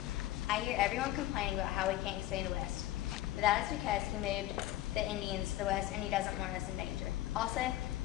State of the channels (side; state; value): right; quieter; 15.1 dB